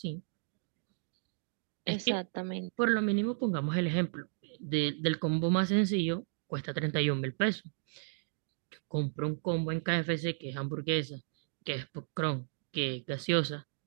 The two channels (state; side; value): silent; left; digital silence